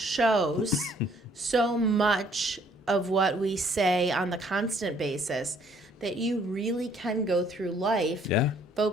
so much of what we say on the constant basis, that you really can go through life Yeah.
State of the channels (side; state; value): both; normal; correlation 0.62